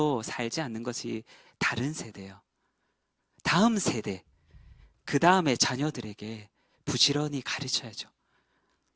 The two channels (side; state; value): both; identical; correlation 1.00